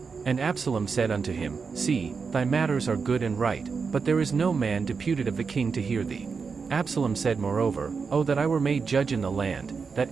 And Absalom said unto him, See, thy matters are good and right, but there is no man deputed of the king to hear thee. Absalom said moreover, O that I were made judge in the land,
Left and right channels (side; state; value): left; quieter; 5.3 dB